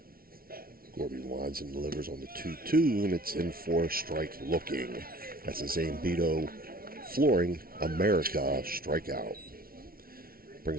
Gorby winds and delivers on the 2-2, and it's in for a strike looking. That's a Zane Beto Flooring America strikeout.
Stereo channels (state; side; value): late; left; 0.43 ms